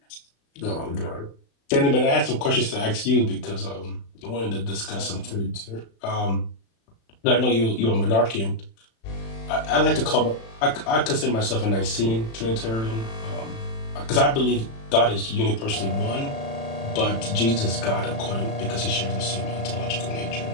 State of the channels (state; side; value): late; right; 36 ms